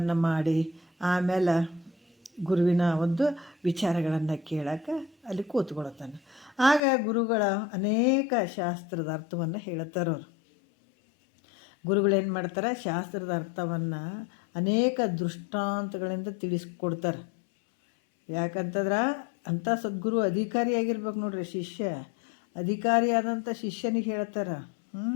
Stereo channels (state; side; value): drops out; right; at 6.8 s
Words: ಮಾಡಿ ಆಮೇಲೆ ಗುರುವಿನ ಒಂದು ವಿಚಾರಗಳನ್ನು ಕೇಳೋಕೆ ಅಲ್ಲಿ ಕೂತ್ಕೊಳ್ತಾನೆ. ಆಗ ಗುರುಗಳ ಅನೇಕ ಶಾಸ್ತ್ರದ ಅರ್ಥವನ್ನು ಹೇಳ್ತಾರವ್ರು. ಗುರುಗಳೇನು ಮಾಡ್ತಾರೆ, ಶಾಸ್ತ್ರದ ಅರ್ಥವನ್ನು ಅನೇಕ ದೃಷ್ಟಾಂತಗಳಿಂದ ತಿಳಿಸ್ಕೊಡ್ತಾರೆ. ಯಾಕಂತಂದ್ರೆ ಅಂಥ ಸದ್ಗುರು ಅಧಿಕಾರಿಯಾಗಿರ್ಬೇಕು ನೋಡ್ರಿ. ಅಧಿಕಾರಿಯಾದಂಥ ಶಿಷ್ಯನಿಗೆ ಹೇಳ್ತಾರೆ.